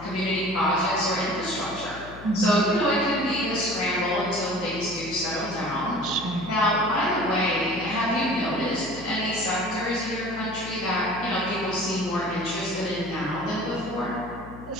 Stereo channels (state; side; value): noise; left; hum, 15 dB below the sound